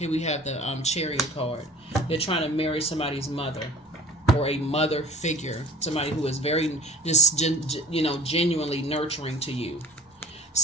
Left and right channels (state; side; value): normal; both; correlation 0.45